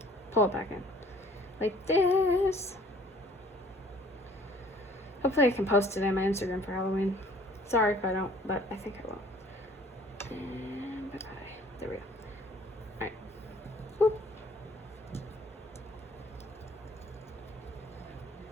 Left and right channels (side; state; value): both; normal; correlation 0.55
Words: pull it back in. Like this. Hopefully I can post it on my Instagram for Halloween. Sorry if I don't, but I think I will. And bye-bye. There we go. Alright. Whoop.